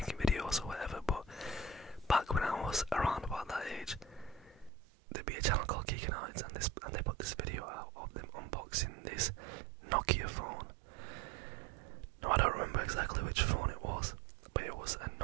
videos or whatever, but back when I was around about that age, there'd be a channel called Geekanoids, and they put this video out of them unboxing this Nokia phone. No, I don't remember exactly which phone it was, but it was a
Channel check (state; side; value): drops out; left; at 4.7 s